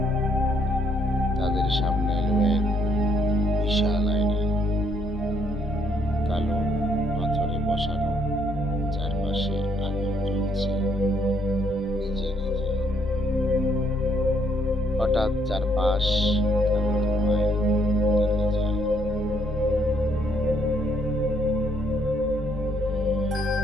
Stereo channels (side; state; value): both; normal; correlation 0.70